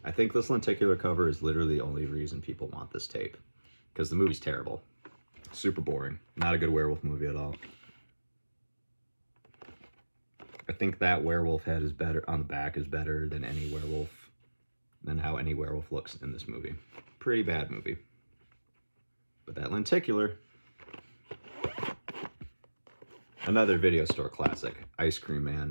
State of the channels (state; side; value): inverted; both; correlation -1.00